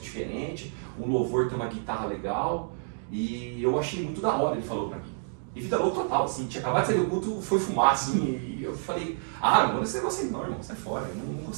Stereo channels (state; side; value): silent; left; digital silence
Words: diferentes, um louvor tem uma guitarra legal, e eu achei muito da hora, ele falou para mim. E vida louca total, assim, tinha acabado de sair do culto, foi fumar, assim, e eu falei, não vou nesse negócio aí não, irmão, sai fora, eu não